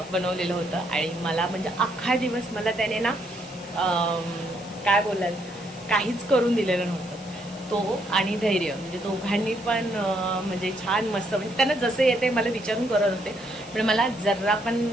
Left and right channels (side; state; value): left; noise; hiss, 21 dB below the sound